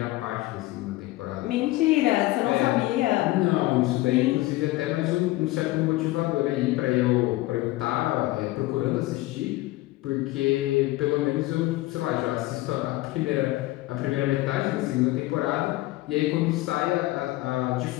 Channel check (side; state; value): right; quieter; 18.6 dB